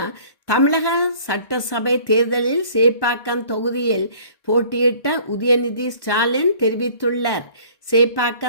தமிழக சட்டசபை தேர்தலில் சேப்பாக்கம் தொகுதியில் போட்டியிட்ட உதயநிதி ஸ்டாலின் தெரிவித்துள்ளார்.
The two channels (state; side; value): late; right; 1.1 ms